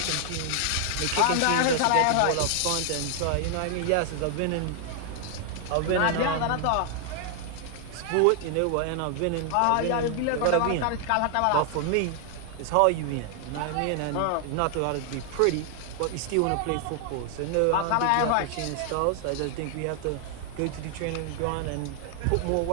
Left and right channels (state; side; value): different; both; correlation 0.00